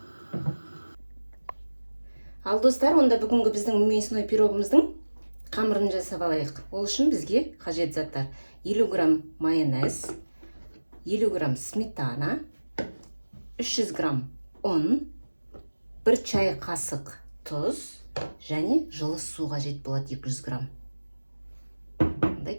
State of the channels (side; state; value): both; inverted; correlation -1.00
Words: Ал достар, онда бүгінгі біздің мясной пирогымыздың қамырын жасап алайық. Ол үшін бізге қажет заттар: 50 грамм майонез, 50 грамм сметана, 300 грамм ұн, 1 чай қасық тұз және жылы су қажет болады 200 грамм. Онда